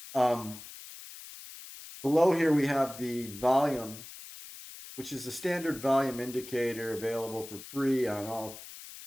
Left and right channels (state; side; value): noise; left; hiss, 14 dB below the sound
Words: Below here we have the volume, which is a standard volume indicator available for free on all